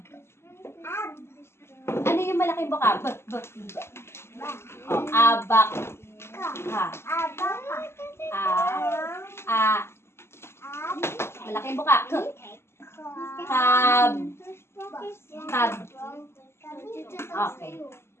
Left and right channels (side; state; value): right; late; 0.12 ms